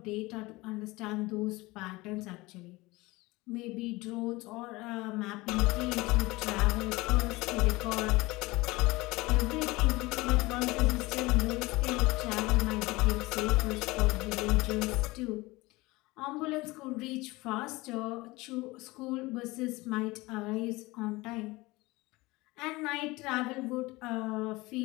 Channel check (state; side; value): quieter; right; 21.7 dB